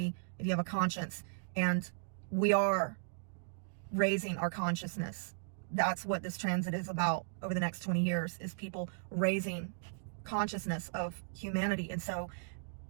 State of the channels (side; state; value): left; silent; digital silence